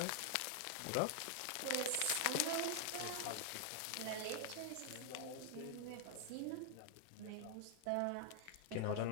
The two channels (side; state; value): both; different; correlation 0.00